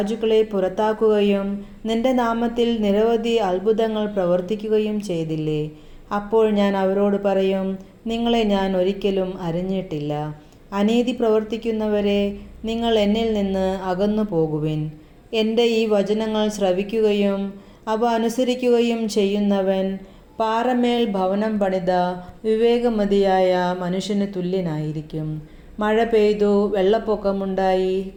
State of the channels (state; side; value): identical; both; correlation 1.00